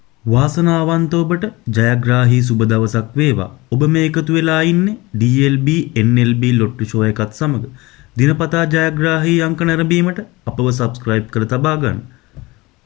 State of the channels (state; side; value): quieter; right; 22.1 dB